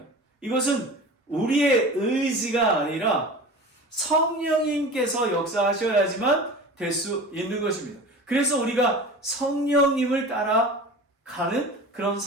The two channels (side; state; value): both; normal; correlation 0.35